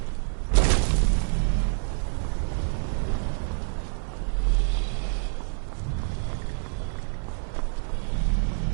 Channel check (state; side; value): silent; left; digital silence